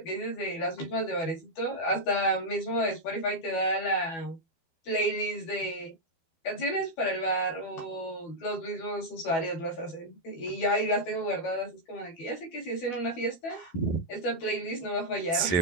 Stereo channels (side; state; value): right; late; 12 ms